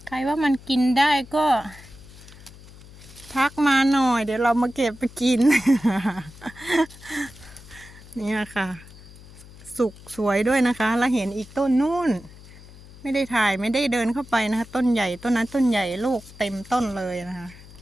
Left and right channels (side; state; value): left; noise; hum, 20 dB below the sound